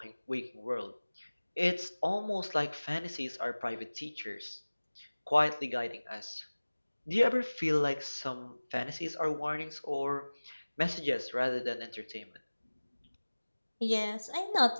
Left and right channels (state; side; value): inverted; both; correlation -1.00